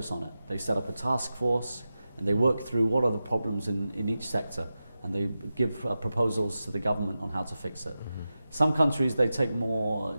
on it. They set up a task force and they work through what are the problems in each sector, and they give proposals to the government on how to fix it. Some countries, they take more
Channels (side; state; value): both; inverted; correlation -0.92